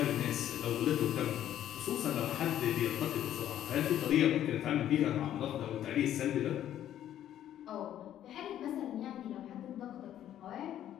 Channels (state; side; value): quieter; right; 11.4 dB